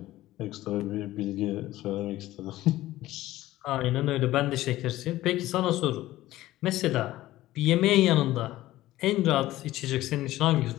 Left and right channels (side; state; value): right; quieter; 15.9 dB